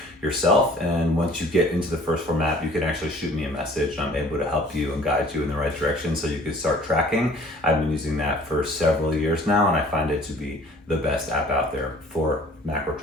yourself. And once you get into the First Form app, you can actually shoot me a message and I'm able to help you and guide you in the right direction so you can start tracking. I've been using that for several years now, and I find it to be the best app out there for macro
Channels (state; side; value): normal; both; correlation 0.52